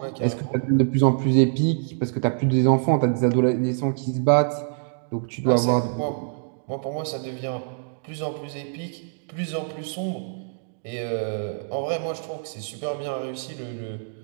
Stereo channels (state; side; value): silent; left; digital silence